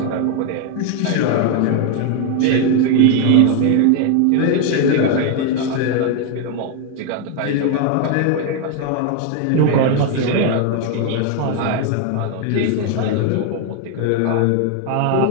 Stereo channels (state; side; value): different; both; correlation 0.01